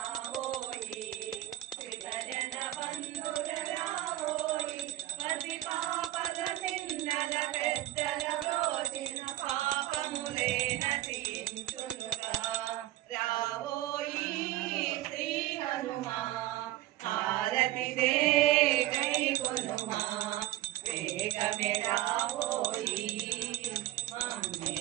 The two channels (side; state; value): left; quieter; 15.7 dB